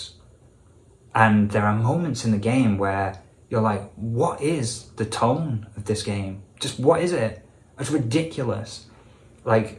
And there are moments in the game where you're like, what is the tone of this game? Just what is it? It's ridiculous. Like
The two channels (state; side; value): identical; both; correlation 1.00